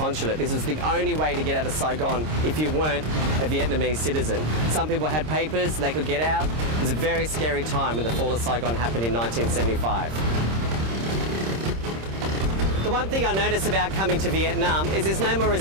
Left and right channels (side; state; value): left; late; 26 ms